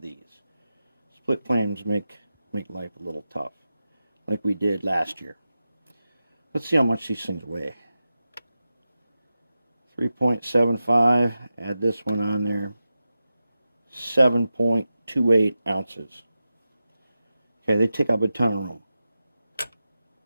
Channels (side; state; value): both; inverted; correlation -0.92